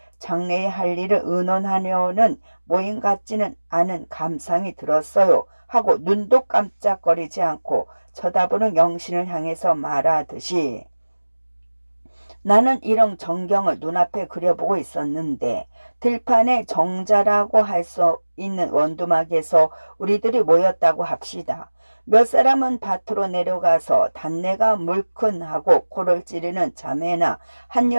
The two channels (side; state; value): both; inverted; correlation -1.00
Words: 장래에 할 일을 의논하려는 모임 같지는 않은 감상이 들었어요 하고 눈도 깜짝거리지 않고 쳐다보는 영신을 향해서 말하듯이 나는 이런 전경을 눈앞에 그려보고 있었는데 들판에 정자라고 할 수 있는 원두막에서 우리들이 모였다고 합시다. 몇 사람은 밭으로 내려가서 단내가 물큰하고 코를 찌르는 자매나